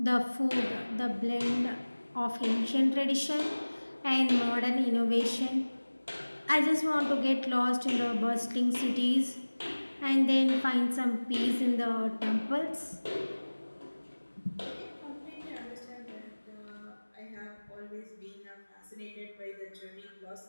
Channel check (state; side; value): inverted; both; correlation -1.00